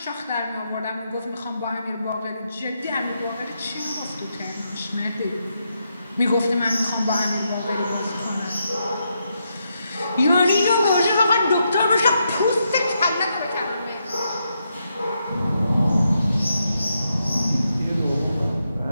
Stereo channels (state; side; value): inverted; both; correlation -0.81